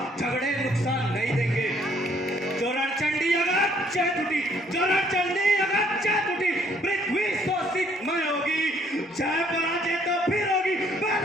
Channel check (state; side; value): normal; both; correlation 0.64